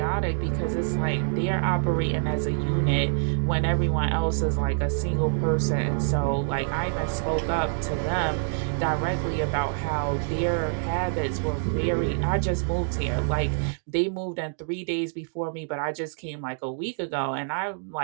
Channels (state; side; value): silent; left; digital silence